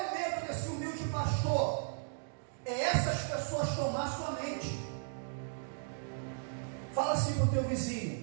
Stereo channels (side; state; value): left; silent; digital silence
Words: medo desse humilde pastor? É essas pessoas tomar sua mente. Fala assim para o teu